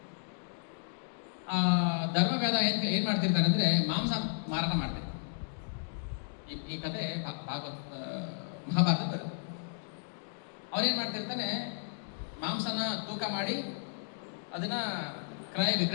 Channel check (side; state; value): right; silent; digital silence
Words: ಧರ್ಮವ್ಯಾಧ ಏನ್ ಮಾಡ್ತಿರ್ತಾನೆ ಅಂದ್ರೆ, ಮಾಂಸ ಮಾರಾಟ ಮಾಡ್ತಾರೆ. ಈ ಕಥೆ ಮಹಾಭಾರತ ಬರುತ್ತೆ. ಅವನೇನ್ ಮಾಡ್ತಿರ್ತಾನೆ, ಮಾಂಸನ ತೂಕ ಮಾಡಿ ಅದನ್ನ ಕ್ರಯ